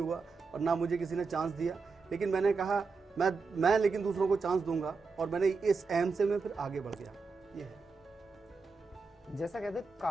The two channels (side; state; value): left; quieter; 4.5 dB